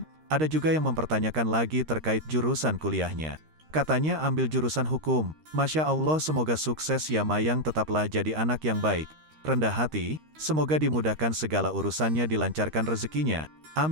ada juga yang mempertanyakan lagi terkait jurusan kuliahnya. Katanya ambil jurusan hukum. Masya Allah, semoga sukses ya Mayang, tetaplah jadi anak yang baik, rendah hati, semoga dimudahkan segala urusannya, dilancarkan rezekinya.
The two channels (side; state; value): left; late; 13 ms